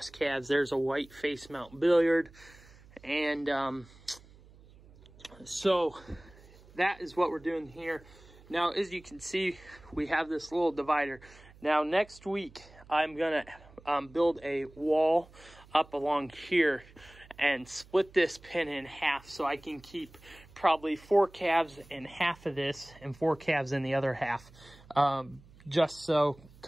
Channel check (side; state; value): right; noise; hum, 24 dB below the sound